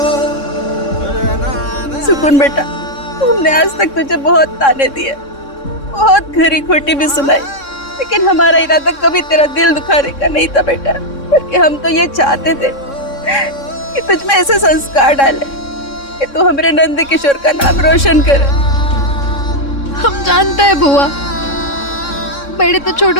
सुकून बेटा, हमने आज तक तुझे बहुत ताने दिए, बहुत खरी खोटी भी सुनाई, लेकिन हमारा इरादा कभी तेरा दिल दुखाने का नहीं था बेटा। बल्कि हम तो ये चाहते थे कि तुझ में ऐसे संस्कार डाले कि तू हमारे नंद किशोर का नाम रोशन करे। हम जानते हैं बुआ, बड़े तो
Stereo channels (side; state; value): right; late; 3.6 ms